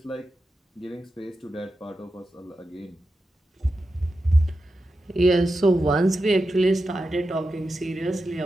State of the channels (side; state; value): both; normal; correlation 0.90